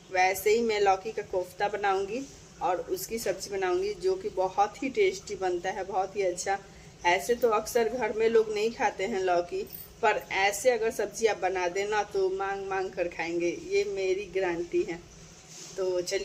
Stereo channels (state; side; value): identical; both; correlation 1.00